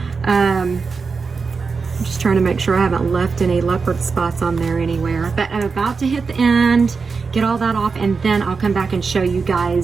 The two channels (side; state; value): left; quieter; 4.9 dB